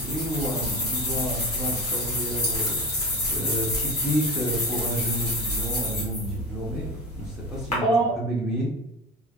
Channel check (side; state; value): both; normal; correlation 0.29